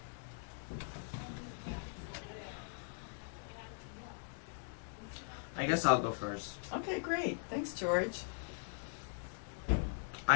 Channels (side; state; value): right; silent; digital silence